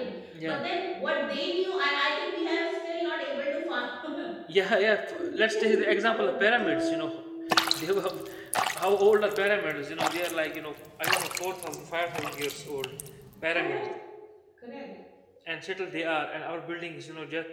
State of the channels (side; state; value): both; identical; correlation 1.00